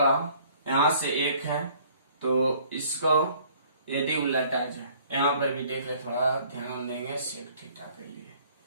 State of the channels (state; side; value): inverted; both; correlation -0.57